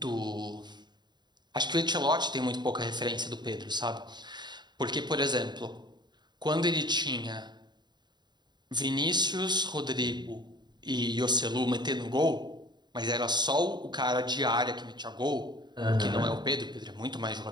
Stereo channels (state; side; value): late; left; 0.21 ms